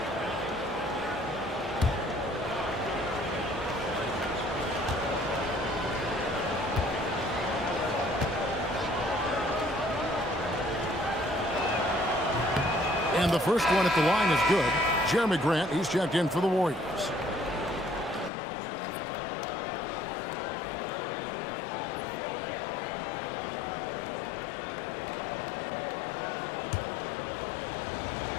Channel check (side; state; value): right; drops out; at 18.3 s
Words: And the first one at the line is good. Jeremy Grant, he's checked in for the Warriors.